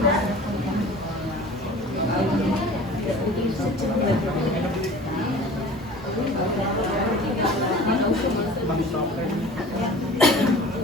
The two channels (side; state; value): both; normal; correlation 0.42